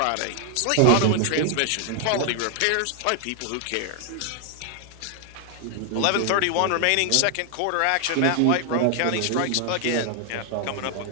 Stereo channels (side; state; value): both; different; correlation 0.00